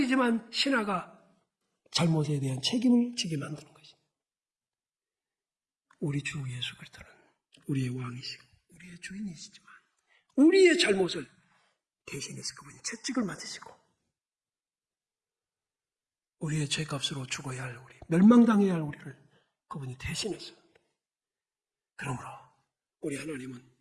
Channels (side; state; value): both; identical; correlation 1.00